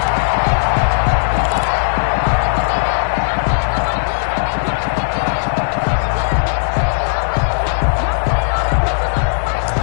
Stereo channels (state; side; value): silent; right; digital silence